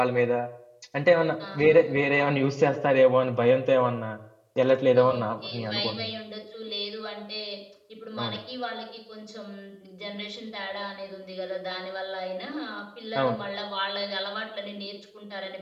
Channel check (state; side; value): identical; both; correlation 1.00